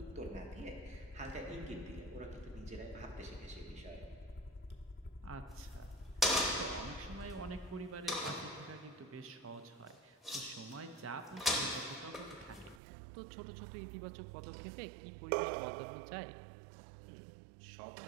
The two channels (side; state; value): left; drops out; at 12.8 s